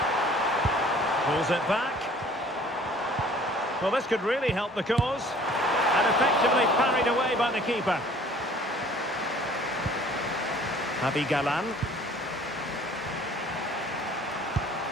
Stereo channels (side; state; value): both; normal; correlation 0.52